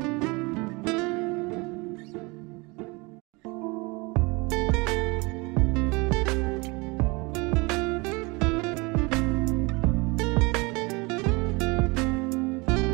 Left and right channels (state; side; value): quieter; left; 26.5 dB